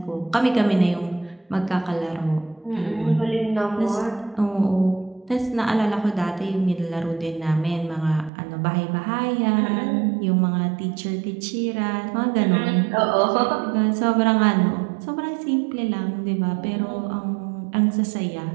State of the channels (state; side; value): drops out; left; at 8.3 s